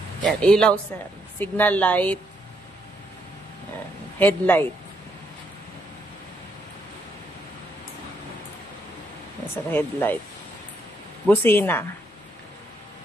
Yan, ilaw sir. Signal light. Yan. Headlight. Yan sir, headlight. Busina.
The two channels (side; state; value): both; normal; correlation 0.75